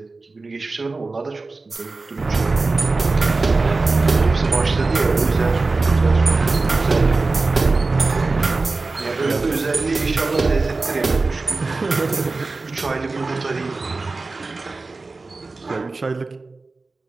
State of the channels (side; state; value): left; quieter; 3.6 dB